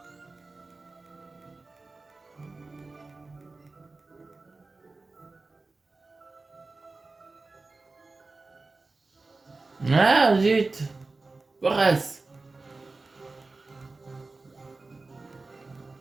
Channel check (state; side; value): quieter; left; 3.6 dB